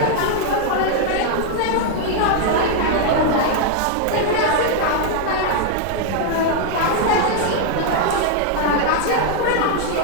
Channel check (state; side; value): different; both; correlation 0.00